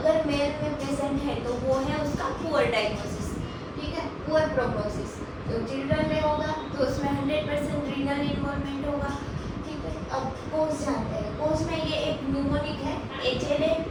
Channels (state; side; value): identical; both; correlation 1.00